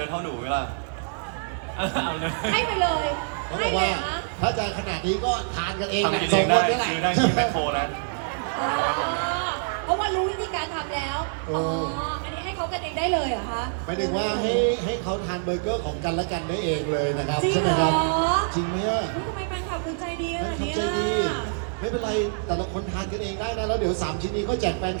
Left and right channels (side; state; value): left; silent; digital silence